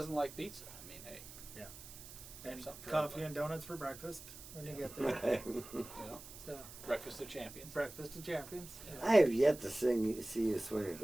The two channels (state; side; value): noise; right; hiss, 15 dB below the sound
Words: like pizza? I mean, hey, And something for coffee everybody. and donuts for breakfast when you Yeah. get there. So breakfast of champions. breakfast of champions. I have yet to see you swing a